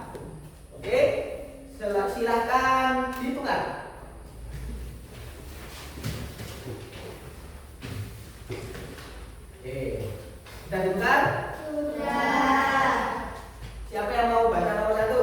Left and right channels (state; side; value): identical; both; correlation 1.00